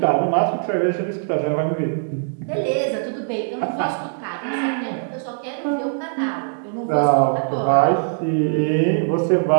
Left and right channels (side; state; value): left; silent; digital silence